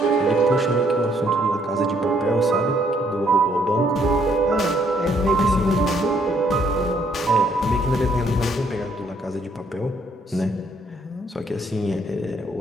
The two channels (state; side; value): normal; both; correlation 0.68